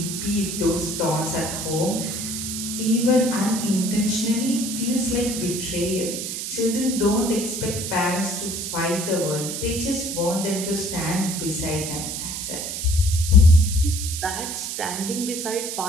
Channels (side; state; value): right; noise; hiss, 5 dB below the sound